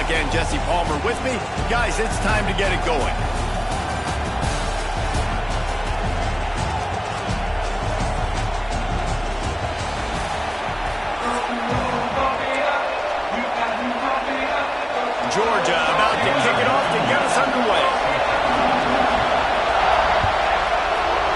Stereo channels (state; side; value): identical; both; correlation 1.00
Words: and Jesse Palmer with me. Guys, it's time to get it going. Georgia about to kick it off to get us underway.